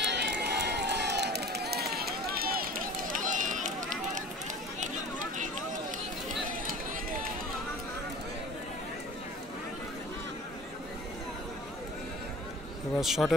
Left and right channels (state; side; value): normal; both; correlation 0.42